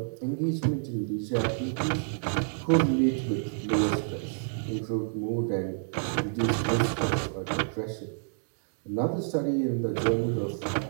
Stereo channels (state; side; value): silent; left; digital silence